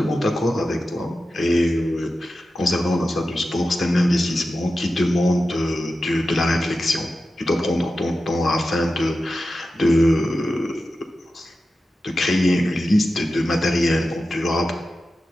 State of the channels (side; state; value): both; normal; correlation 0.92